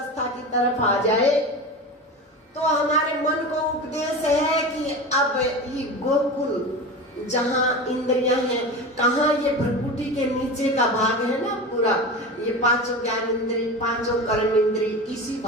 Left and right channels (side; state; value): both; normal; correlation 0.28